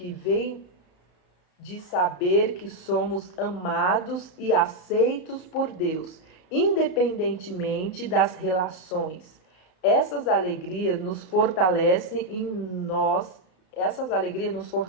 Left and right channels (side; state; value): right; late; 33 ms